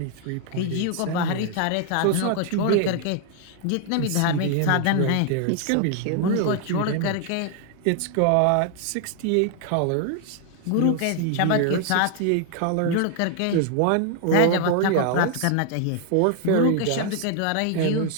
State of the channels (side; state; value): both; different; correlation 0.00